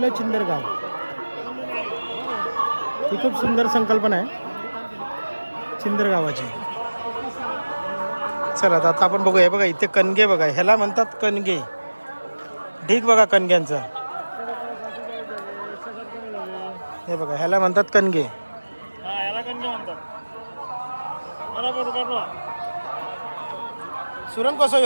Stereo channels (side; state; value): both; inverted; correlation -1.00